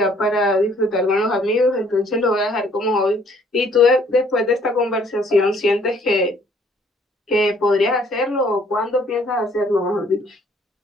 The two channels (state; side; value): normal; both; correlation 0.61